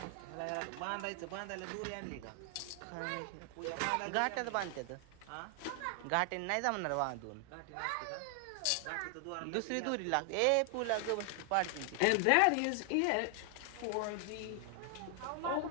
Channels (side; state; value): both; different; correlation 0.00